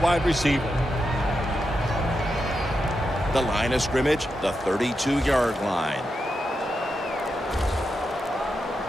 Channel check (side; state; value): both; normal; correlation 0.86